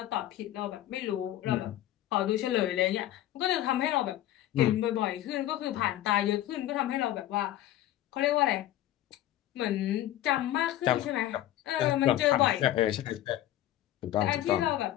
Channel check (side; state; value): right; quieter; 13.6 dB